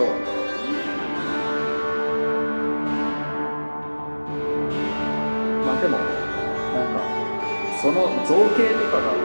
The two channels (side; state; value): both; inverted; correlation -1.00